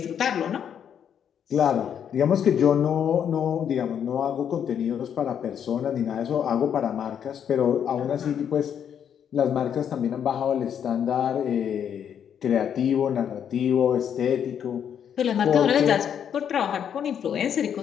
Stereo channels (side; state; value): right; quieter; 8.6 dB